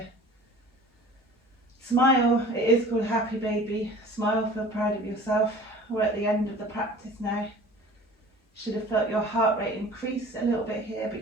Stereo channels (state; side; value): normal; both; correlation 0.44